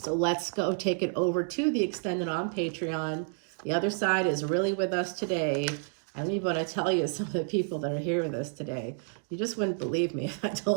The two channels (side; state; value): left; silent; 58 dB below the other